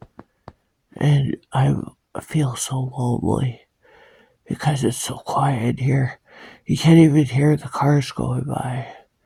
And I feel so lonely because it's so quiet here. You can't even hear the cars going by.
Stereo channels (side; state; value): both; identical; correlation 1.00